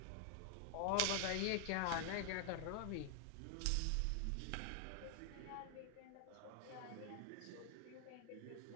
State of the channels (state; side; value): different; both; correlation 0.00